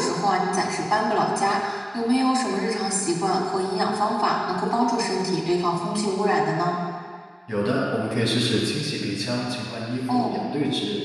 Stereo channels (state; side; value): identical; both; correlation 1.00